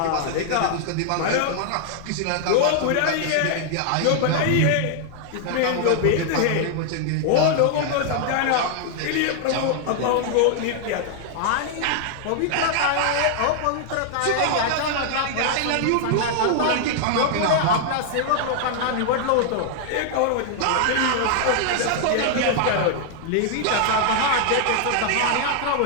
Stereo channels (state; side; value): different; both; correlation 0.00